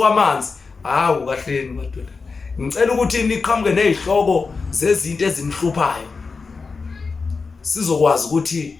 hawu kahleni madodana ngicela ukuthi niqhamuke nezihloko zezinto ezinihluphayo sizokwazi ukuthi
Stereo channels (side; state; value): right; quieter; 4.6 dB